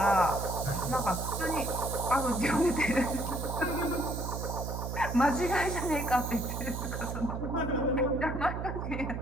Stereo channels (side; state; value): right; noise; hum, 4 dB below the sound